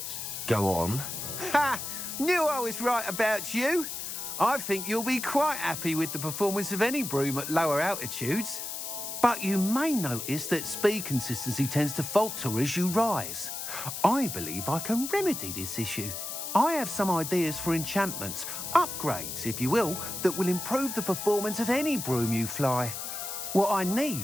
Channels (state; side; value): noise; left; hiss, 6 dB below the sound